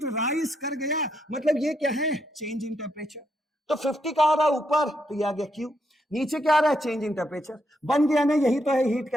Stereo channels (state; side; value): normal; both; correlation 0.78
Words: राइज कर गया, मतलब ये क्या है, चेंज इन टेम्परेचर। तो 50 का आ रहा है ऊपर, तो ये आ गया क्यू, नीचे क्या आ रहा है, चेंज इन टेम्परेचर, बन गया ना, यही तो है हीट